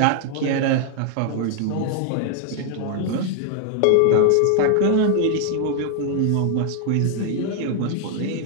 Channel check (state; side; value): different; both; correlation 0.00